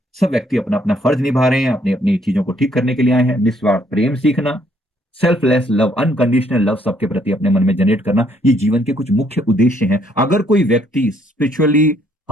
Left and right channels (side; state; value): both; normal; correlation 0.68